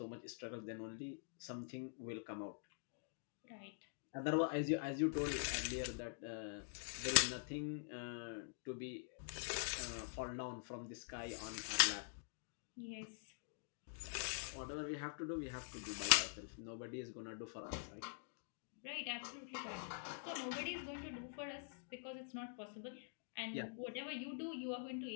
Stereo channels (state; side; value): silent; right; digital silence